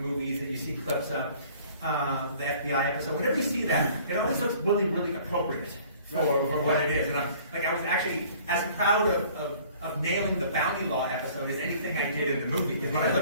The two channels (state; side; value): inverted; both; correlation -0.52